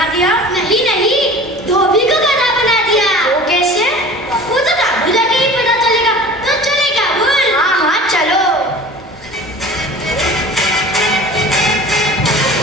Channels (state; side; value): normal; both; correlation 0.41